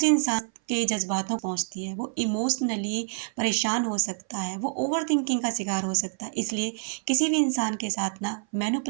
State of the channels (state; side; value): silent; left; 57 dB below the other